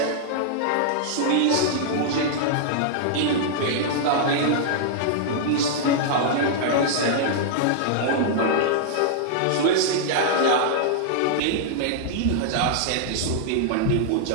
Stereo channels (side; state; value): both; different; correlation -0.01